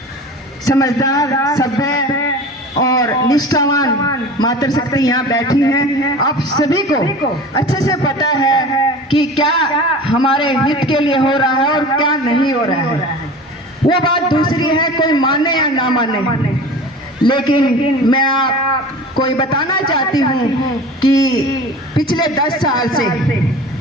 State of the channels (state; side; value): normal; both; correlation 0.37